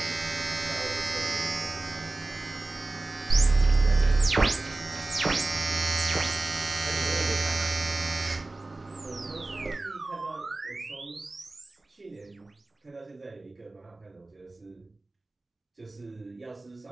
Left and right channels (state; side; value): quieter; left; 3.0 dB